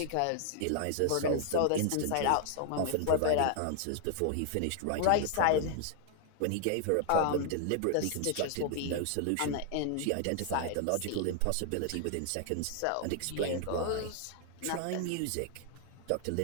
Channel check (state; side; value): different; both; correlation 0.00